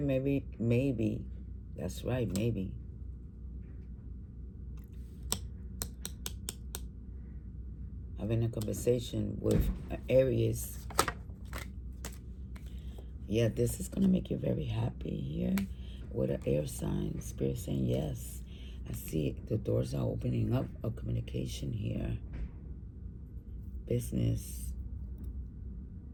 maybe. That's right, maybe. Having a conversation with Aries. Yeah, this is going to make you very happy here with an air sign. Spirit saying yes. I see the doors are opening up of communication here. Business.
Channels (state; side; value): identical; both; correlation 1.00